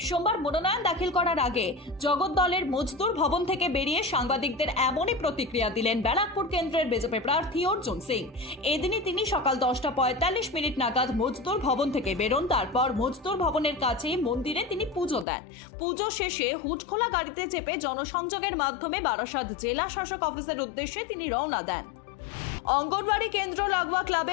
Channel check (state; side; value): drops out; right; at 15.2 s